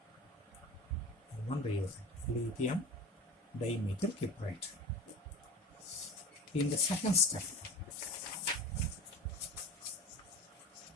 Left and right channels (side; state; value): both; normal; correlation 0.33